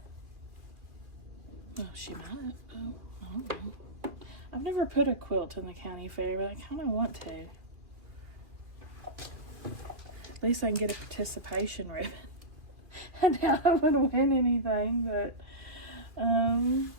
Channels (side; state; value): left; late; 2.4 ms